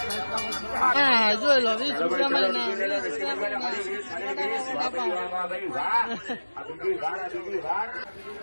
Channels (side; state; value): both; inverted; correlation -1.00